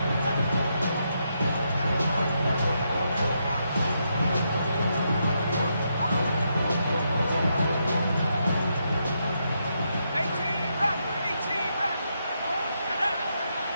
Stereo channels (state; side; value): inverted; both; correlation -0.80